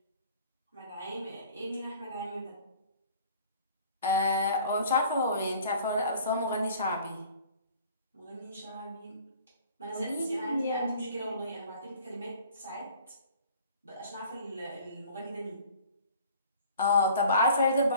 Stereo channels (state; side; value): inverted; both; correlation -0.51